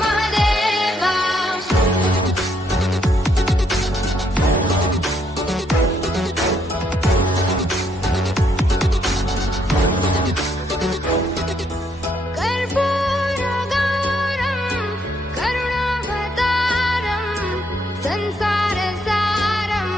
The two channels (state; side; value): normal; both; correlation 0.73